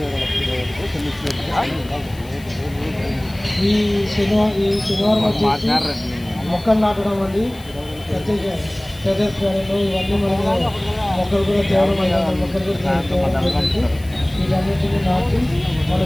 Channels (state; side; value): noise; left; hiss, 23 dB below the sound